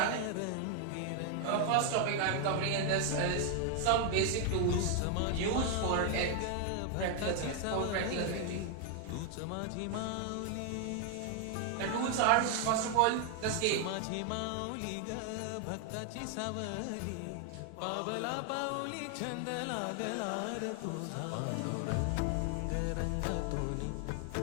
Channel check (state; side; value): different; both; correlation 0.00